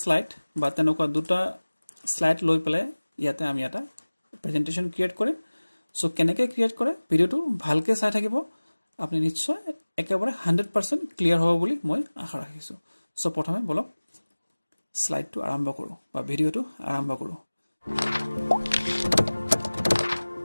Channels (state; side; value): inverted; both; correlation -1.00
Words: স্লাইড বা তেনেকুৱা দুটা স্লাইড লৈ পেলাই ইয়াতে আমি এটা প্ৰেজেন্টেশন ক্ৰিয়েট কৰিম সো কেনেকৈ ক্ৰিয়েট কৰে ভিডিওটো ভালকৈ চাই থাকিব আপুনি নিশ্চয় একেবাৰে 100% ক্লিয়াৰ হ'ব বুলি মই আশা ৰাখিছো সো প্ৰথমে বলক স্লাইডটো আৰম্ভ কৰো বা ভিডিওটো আৰম্ভ কৰো